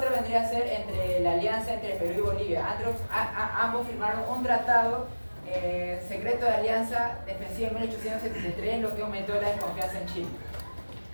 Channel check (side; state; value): both; inverted; correlation -1.00